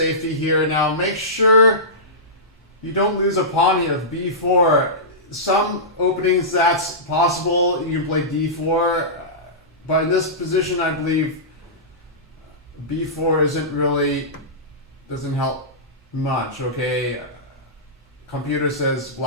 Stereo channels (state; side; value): normal; both; correlation -0.18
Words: here. Now make sure you don't lose a pawn here with b4. Some openings that's possible. You can play d4, but in this position, I believe b4 doesn't help much. Okay, computer says